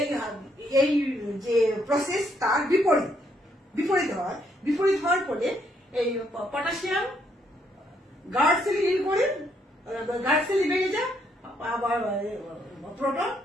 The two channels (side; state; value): both; normal; correlation 0.73